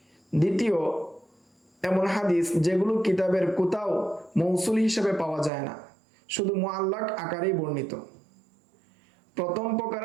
দ্বিতীয়, এমন হাদিস যেগুলো কিতাবের কোথাও মৌসুল হিসেবে পাওয়া যায় না, শুধু মুআল্লাক আকারেই বর্ণিত। প্রথম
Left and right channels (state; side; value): drops out; left; at 5.5 s